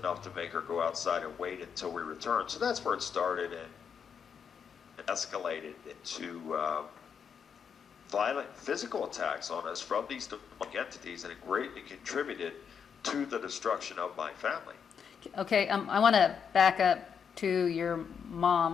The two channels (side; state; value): right; quieter; 7.0 dB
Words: to make her go outside and wait until we returned. So that's where it started, and it escalated into violent physical attacks on us from these demonic entities, and it greatly contributed to the destruction of my family. Okay, I want to back up to your